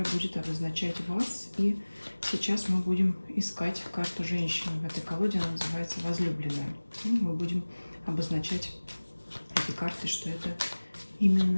будет обозначать вас. И сейчас мы будем искать карту женщины. В этой колоде она называется «Возлюбленная». Мы будем обозначать этой картой, что это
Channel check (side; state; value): both; inverted; correlation -1.00